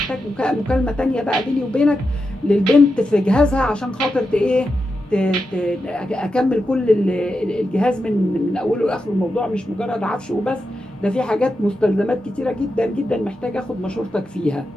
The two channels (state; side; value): normal; both; correlation 0.88